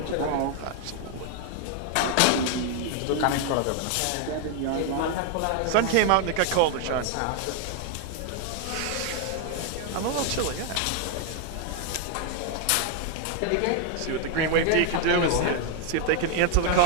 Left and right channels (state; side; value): different; both; correlation 0.00